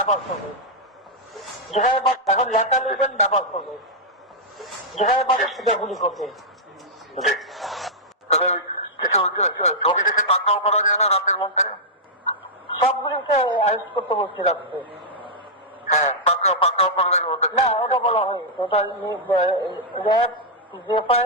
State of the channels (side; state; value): both; normal; correlation -0.08